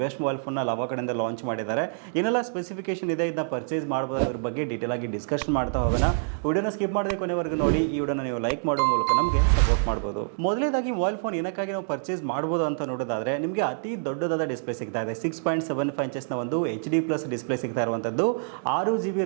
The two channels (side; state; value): left; silent; 59 dB below the other